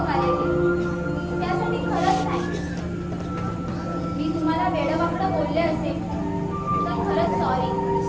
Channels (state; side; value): identical; both; correlation 1.00